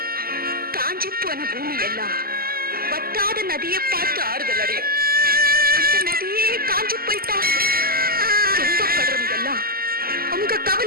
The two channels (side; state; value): left; late; 0.43 ms